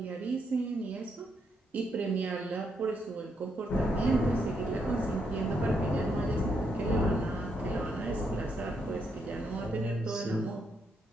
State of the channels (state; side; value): normal; both; correlation 0.78